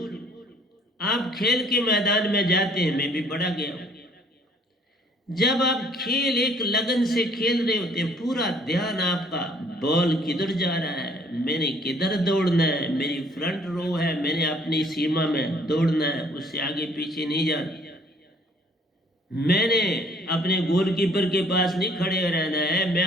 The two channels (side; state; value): both; normal; correlation 0.59